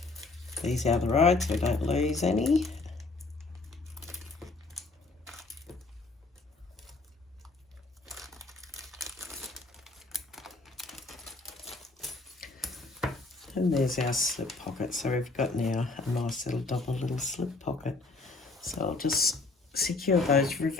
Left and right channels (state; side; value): quieter; right; 3.5 dB